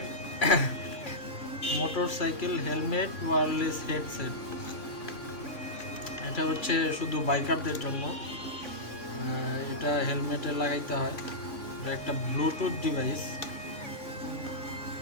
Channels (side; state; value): right; late; 3.6 ms